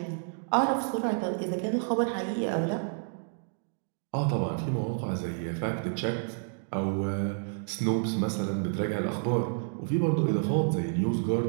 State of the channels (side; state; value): left; silent; digital silence